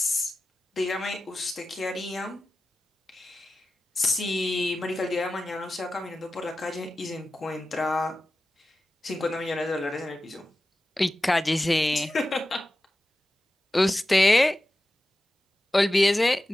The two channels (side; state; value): both; normal; correlation 0.94